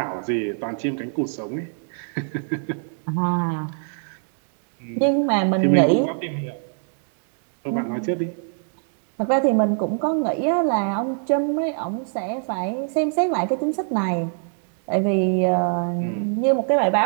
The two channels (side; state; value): left; silent; 63 dB below the other